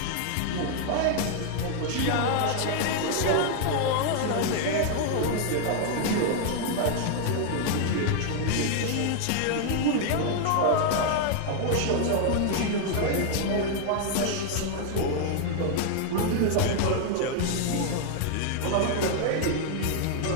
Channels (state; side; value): different; both; correlation 0.00